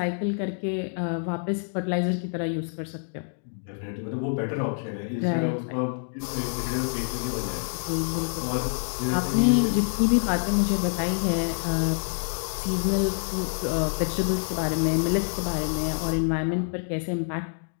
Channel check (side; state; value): right; silent; 60 dB below the other